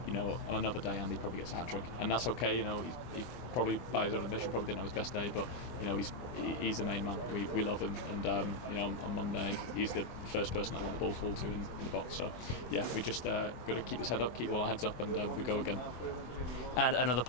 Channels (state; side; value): late; right; 24 ms